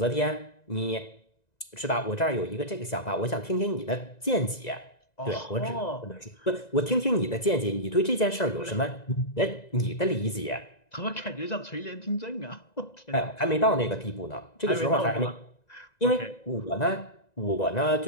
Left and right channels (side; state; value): right; late; 1.9 ms